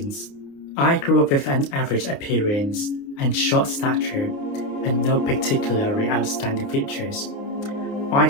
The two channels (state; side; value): late; right; 29 ms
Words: I grew up with an average appearance and short stature and no particularly outstanding features. I